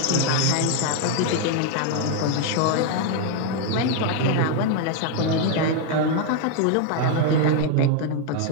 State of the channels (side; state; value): both; different; correlation 0.00